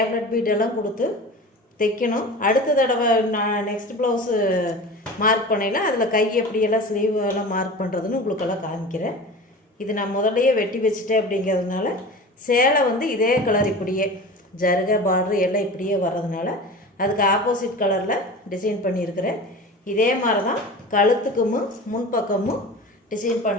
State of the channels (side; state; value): both; normal; correlation 0.34